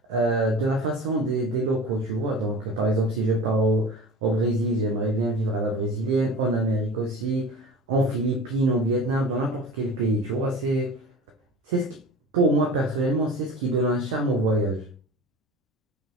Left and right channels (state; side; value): normal; both; correlation 0.37